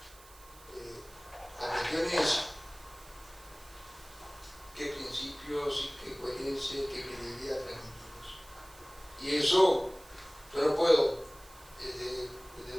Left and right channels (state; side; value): noise; right; hiss, 22 dB below the sound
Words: La cuestión es qué principios, qué coherencia, qué credibilidad transmitimos. Y eso, yo no puedo, desde